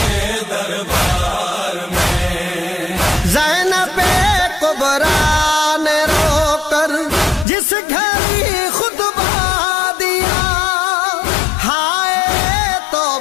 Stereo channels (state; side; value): drops out; right; at 7.5 s